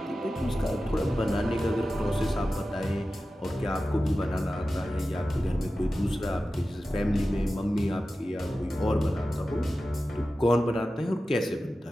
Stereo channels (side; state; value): both; normal; correlation 0.94